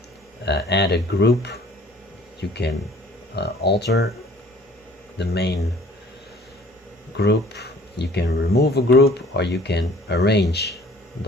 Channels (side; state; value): both; normal; correlation 0.53